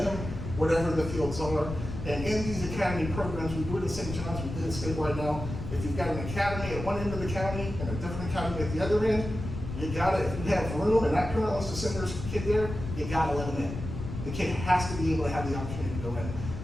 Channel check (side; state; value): left; noise; rumble, 7 dB below the sound